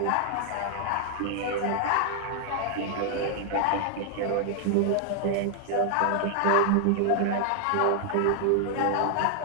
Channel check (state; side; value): different; both; correlation 0.00